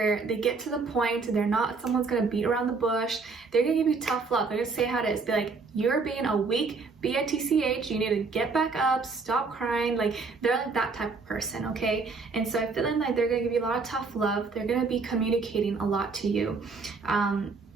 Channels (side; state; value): left; quieter; 4.4 dB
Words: get to the point. They're not someone's gonna beat around the bush. They're gonna give you tough love. They're gonna say how it is. Be like, you're being a weak bitch, you need to get back up, stop crying. Like, they're like that type of person, okay? And so I'm feeling like they're gonna give you a lot of tough love. They're gonna be communicating a lot to you,